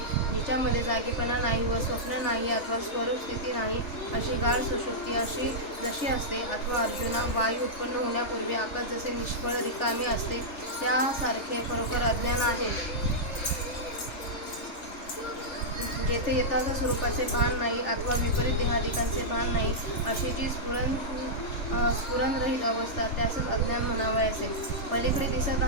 जिच्यामध्ये जागेपणा नाही व स्वप्न नाही अथवा स्वरूप स्थिती नाही, अशी गाढ सुषुप्ती जशी असते, अथवा अर्जुना, वायू उत्पन्न होण्यापूर्वी आकाश जसे निष्फळ रिकामे असते, त्यासारखे खरोखर अज्ञान आहे. जेथे यथार्थ स्वरूपाचे भान नाही अथवा विपरीत देहादिकांचे भान नाही, अशी जी स्फुरणरहित अवस्था, त्यासच अज्ञान म्हणावयाचे. पलीकडे दिसत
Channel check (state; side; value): late; right; 3.4 ms